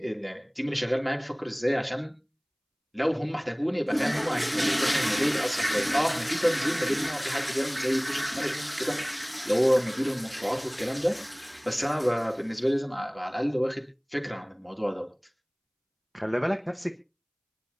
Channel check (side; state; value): both; identical; correlation 1.00